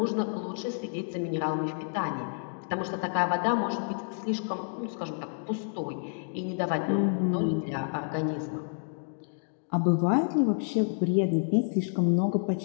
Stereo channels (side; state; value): right; silent; digital silence